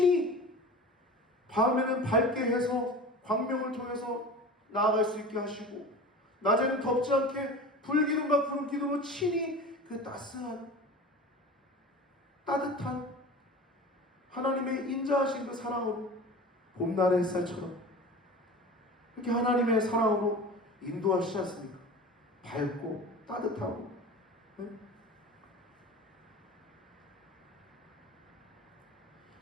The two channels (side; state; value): both; normal; correlation 0.35